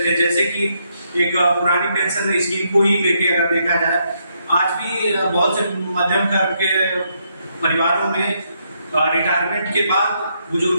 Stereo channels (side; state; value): both; inverted; correlation -0.76